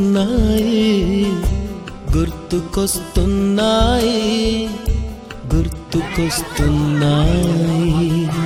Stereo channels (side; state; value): both; identical; correlation 1.00